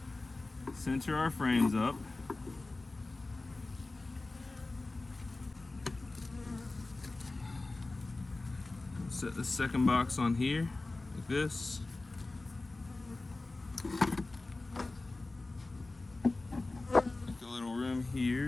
Center our frames up. Set the second box on here, like this. Make a little room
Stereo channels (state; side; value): quieter; right; 3.2 dB